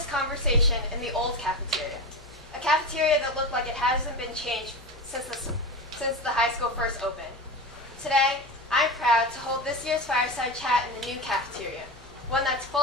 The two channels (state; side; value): normal; both; correlation 0.24